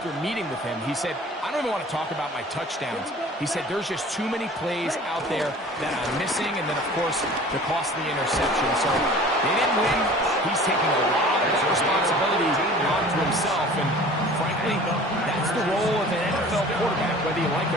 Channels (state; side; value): normal; both; correlation 0.45